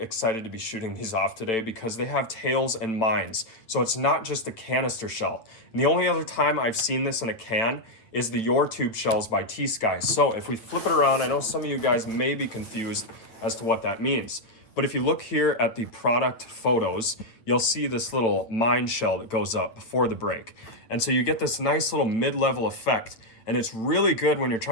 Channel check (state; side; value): late; right; 9.0 ms